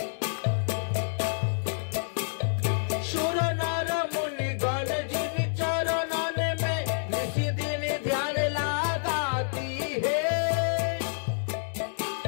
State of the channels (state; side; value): silent; right; digital silence